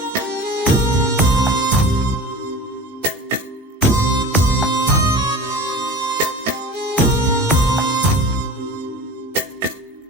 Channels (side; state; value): both; normal; correlation 0.37